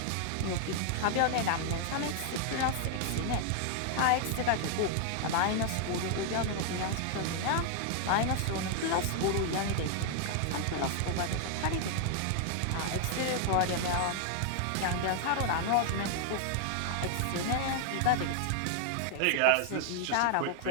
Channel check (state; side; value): different; both; correlation 0.00